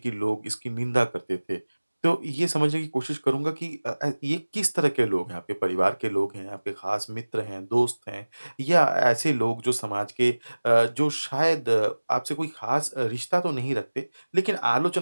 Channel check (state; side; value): inverted; both; correlation -1.00